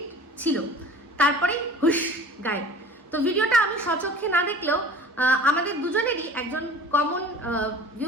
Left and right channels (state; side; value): normal; both; correlation 0.43